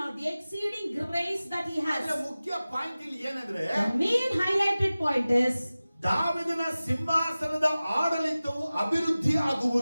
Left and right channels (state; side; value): inverted; both; correlation -0.97